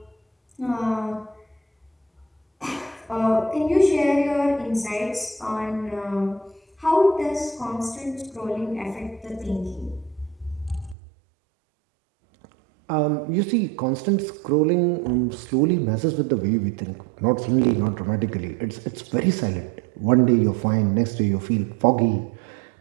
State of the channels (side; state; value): left; drops out; at 11.0 s